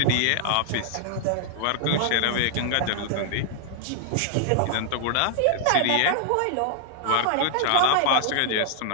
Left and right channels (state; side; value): different; both; correlation -0.01